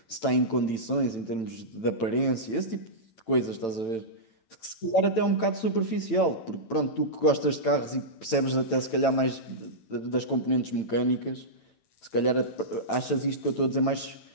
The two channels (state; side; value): late; right; 9.0 ms